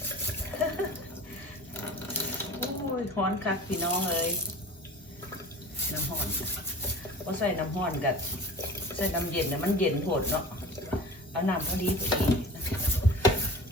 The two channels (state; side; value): normal; both; correlation 0.41